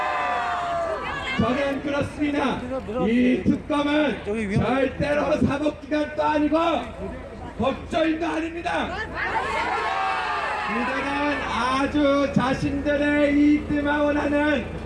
저는 그렇습니다. 이 특검은 절대로 사법기관도 아니고 법조인도 아닙니다. 이들은 아주 자신들의 이익들만 원하는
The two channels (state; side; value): identical; both; correlation 1.00